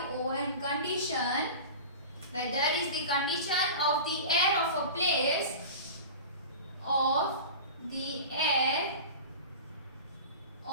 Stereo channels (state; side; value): inverted; both; correlation -0.33